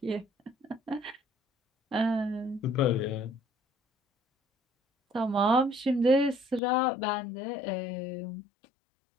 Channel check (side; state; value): right; drops out; at 6.6 s